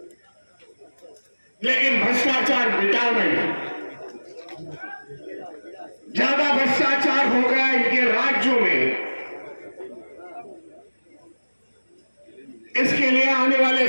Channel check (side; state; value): both; inverted; correlation -1.00